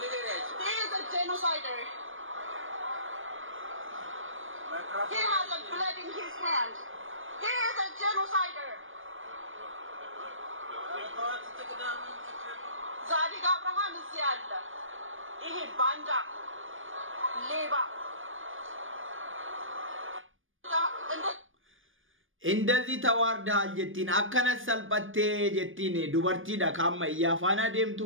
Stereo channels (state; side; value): late; left; 0.58 ms